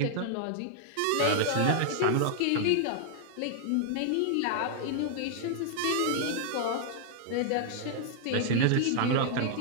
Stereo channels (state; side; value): different; both; correlation 0.00